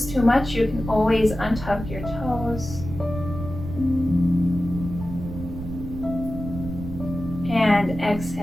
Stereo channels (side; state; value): right; noise; rumble, 9 dB below the sound